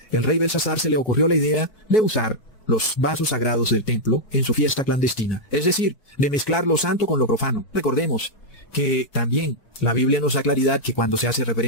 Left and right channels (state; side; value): late; right; 4.6 ms